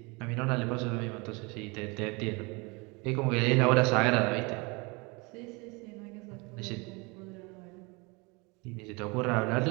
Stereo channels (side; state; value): left; quieter; 27.8 dB